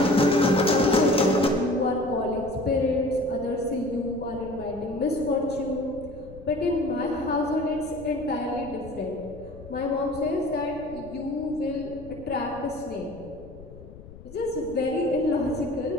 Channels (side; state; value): left; noise; rumble, 17 dB below the sound